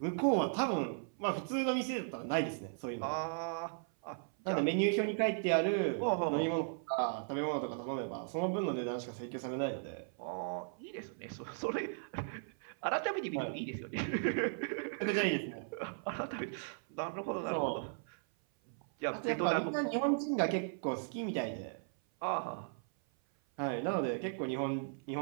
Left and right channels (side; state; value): left; silent; 53 dB below the other